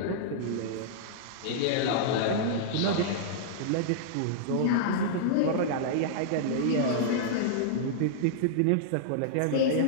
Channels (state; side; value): different; both; correlation -0.02